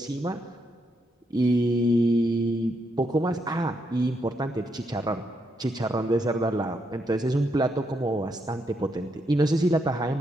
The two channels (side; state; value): both; normal; correlation 0.79